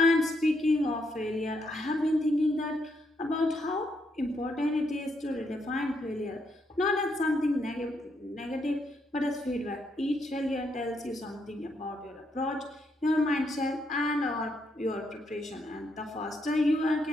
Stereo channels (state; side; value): normal; both; correlation 0.77